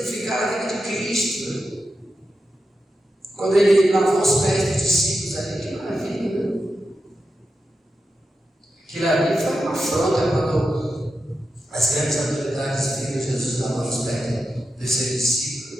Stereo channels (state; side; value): normal; both; correlation 0.89